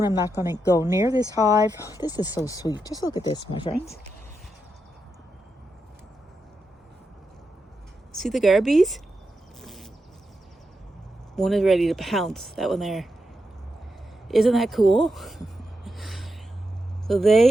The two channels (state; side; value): normal; both; correlation 0.86